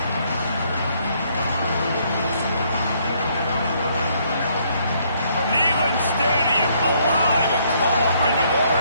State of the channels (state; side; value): inverted; both; correlation -0.68